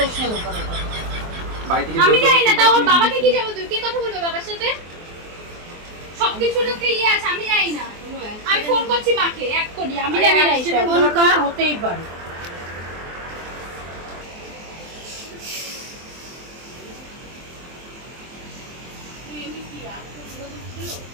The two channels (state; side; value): late; left; 24 ms